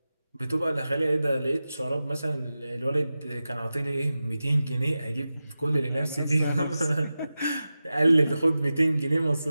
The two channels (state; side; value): inverted; both; correlation -0.94